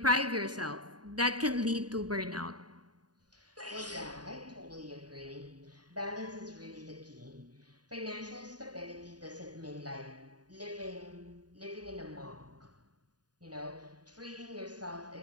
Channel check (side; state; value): left; late; 0.69 ms